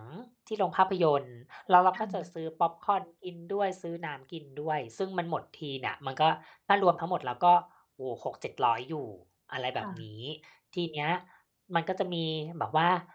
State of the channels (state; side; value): identical; both; correlation 1.00